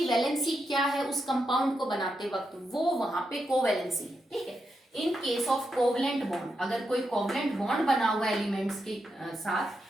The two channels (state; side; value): normal; both; correlation 0.85